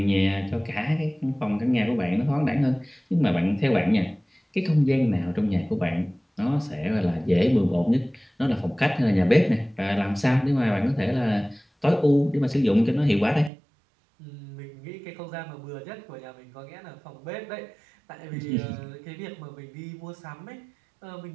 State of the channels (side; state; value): left; drops out; at 13.5 s